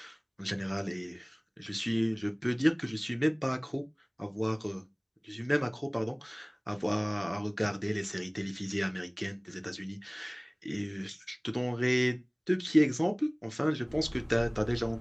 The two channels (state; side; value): identical; both; correlation 1.00